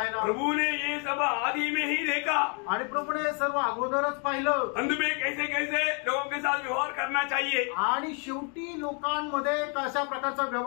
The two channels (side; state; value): right; quieter; 37.6 dB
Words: ना। प्रभु ने ये सब आदि में ही देखा। आणि प्रभूने सर्व अगोदरच पाहिलं, अंत में कैसे कैसे लोगों के साथ व्यवहार करना चाहिए। आणि शेवटी लोकांमध्ये कशा प्रकारचा